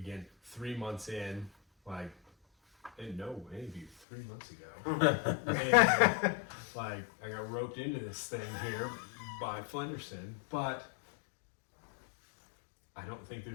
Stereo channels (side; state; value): right; drops out; at 3.9 s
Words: 3 months in, like, I didn't know any of you 3 months ago. And, like, I got roped into this thing here by Flenderson, but I don't think